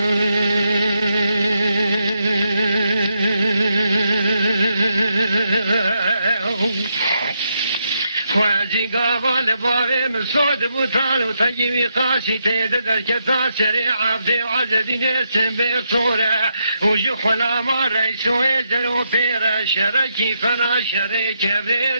خوازی قابل بابي مسود بوتالو تجيبي قاسي تيدر كتا سريع عبدي وعزدين اسم بصورة وجو خلاما ريسو يزلو بيرا شركي فنا شريك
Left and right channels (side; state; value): both; inverted; correlation -0.81